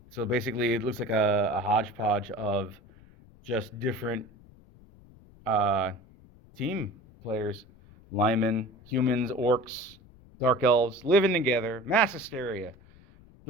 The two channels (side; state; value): left; noise; rumble, 25 dB below the sound